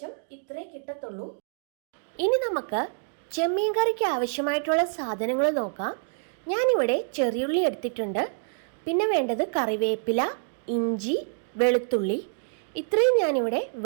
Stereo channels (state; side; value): silent; left; digital silence